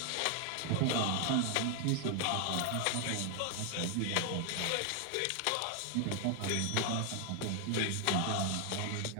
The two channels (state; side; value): different; both; correlation 0.00